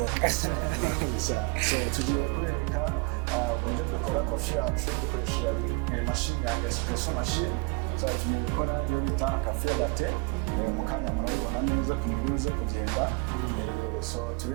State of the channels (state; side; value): quieter; left; 31.2 dB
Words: Murakoze cyane. So tugiye kubereka uburyo dukora coffee yacu dukoresheje machine ya espresso machine. So tugiye gukora iyo bita cafe latte. Mu kanya murabibona neza kuntu biruze kugenda. So